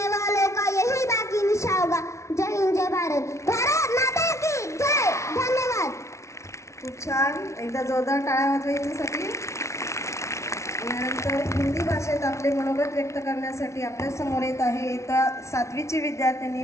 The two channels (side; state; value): right; late; 0.14 ms